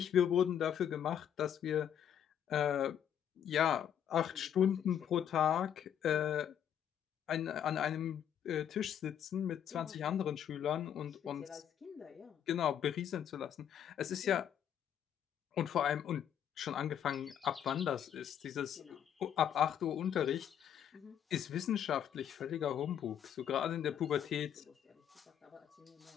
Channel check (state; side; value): quieter; right; 9.4 dB